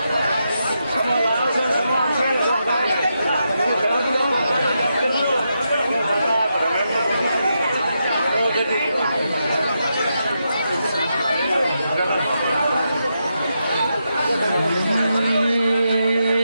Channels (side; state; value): both; inverted; correlation -0.84